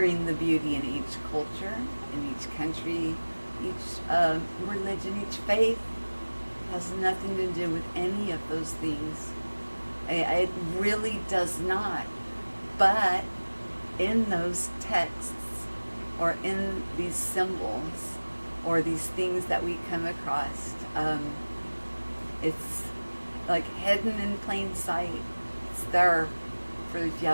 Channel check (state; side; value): inverted; both; correlation -1.00